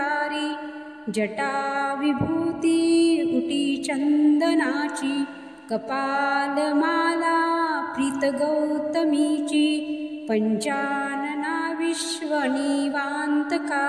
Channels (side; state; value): both; identical; correlation 1.00